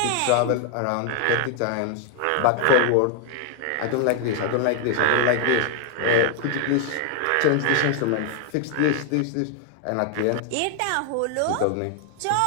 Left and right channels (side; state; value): both; different; correlation 0.00